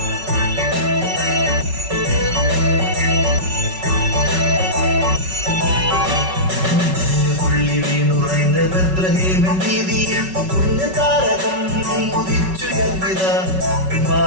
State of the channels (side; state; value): left; late; 5.3 ms